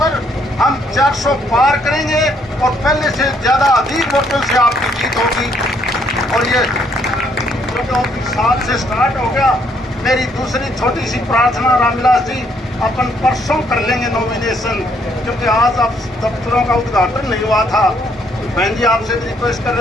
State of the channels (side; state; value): both; normal; correlation 0.69